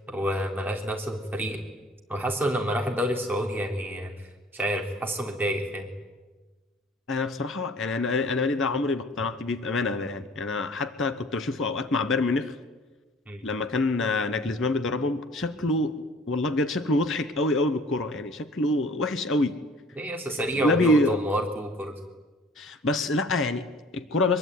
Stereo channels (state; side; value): normal; both; correlation 0.50